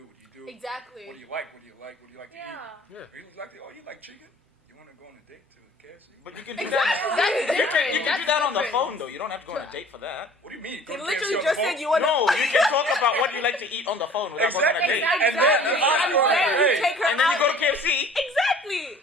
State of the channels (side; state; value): both; normal; correlation 0.49